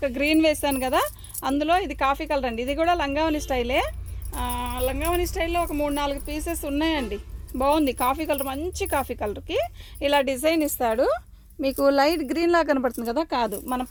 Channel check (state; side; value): identical; both; correlation 1.00